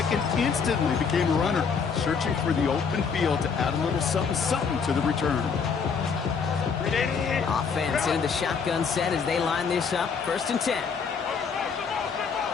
and instantly became a runner, searching for the open field to add a little something to the return. Offense into the shotgun set as they line this up. 1st and 10.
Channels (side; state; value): right; quieter; 5.9 dB